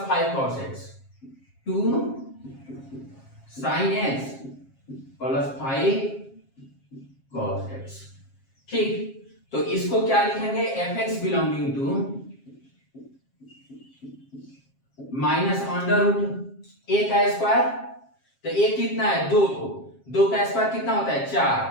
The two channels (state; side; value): late; right; 7.4 ms